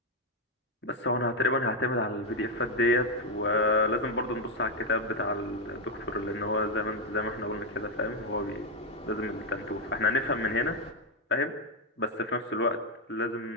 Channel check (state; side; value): normal; both; correlation 0.04